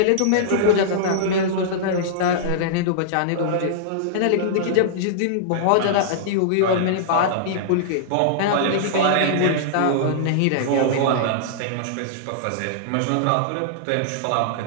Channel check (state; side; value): different; both; correlation -0.02